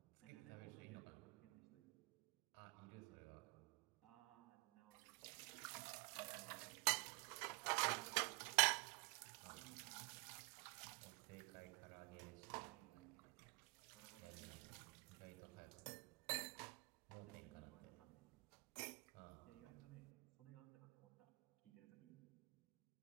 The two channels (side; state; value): left; quieter; 30.9 dB